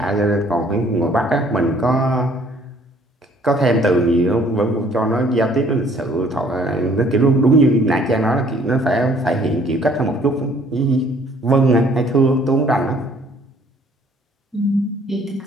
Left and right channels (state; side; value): normal; both; correlation 0.59